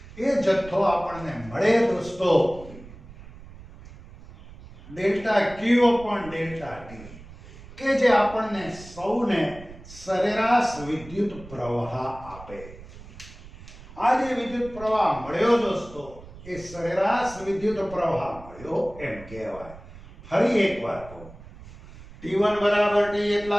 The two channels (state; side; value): noise; right; rumble, 18 dB below the sound